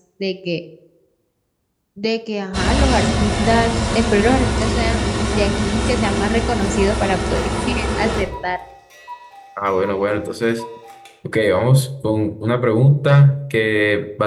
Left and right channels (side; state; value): both; identical; correlation 1.00